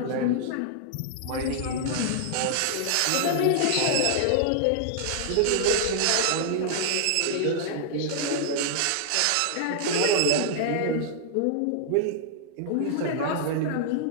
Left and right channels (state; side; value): different; both; correlation -0.01